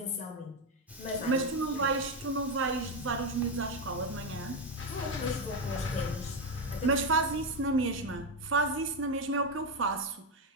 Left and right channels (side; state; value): both; normal; correlation 0.09